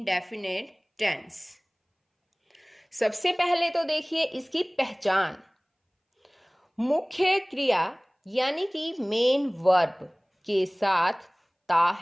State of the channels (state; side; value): identical; both; correlation 1.00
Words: टेंस। सबसे पहले तो देखिए इसकी पहचान। मुख्य क्रिया यानी कि मेन वर्ब के साथ ता